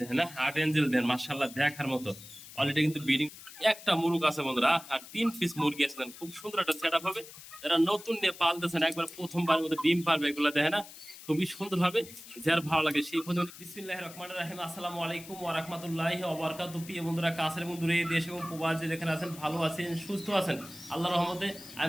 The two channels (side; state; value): left; noise; hiss, 16 dB below the sound